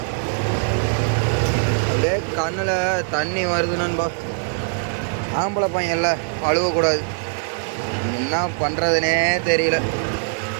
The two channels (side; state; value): left; silent; 64 dB below the other